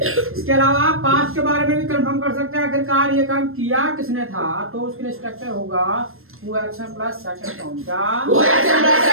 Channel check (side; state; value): left; late; 0.61 ms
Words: इसके अलावा पास्ट के बारे में भी कंफर्म कर सकते हैं आखिरकार ये काम किया किसने था तो उसके लिए स्ट्रक्चर होगा who action plus second form क्या Who action plus